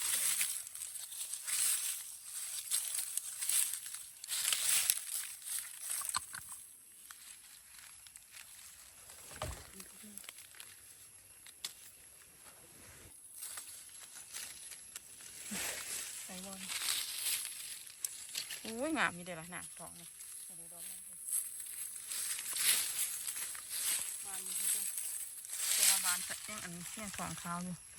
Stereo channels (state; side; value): identical; both; correlation 1.00